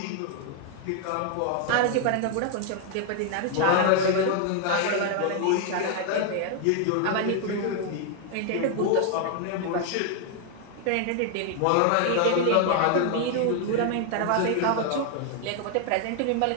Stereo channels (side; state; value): both; different; correlation 0.00